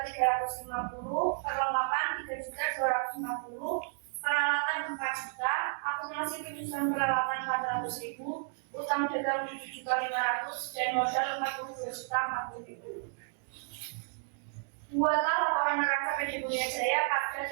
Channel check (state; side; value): silent; left; digital silence